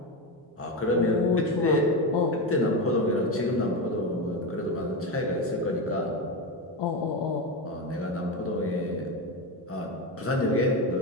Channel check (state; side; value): normal; both; correlation 0.15